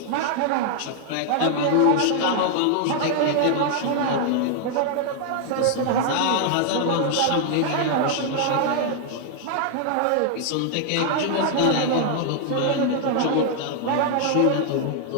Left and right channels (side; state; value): both; different; correlation 0.00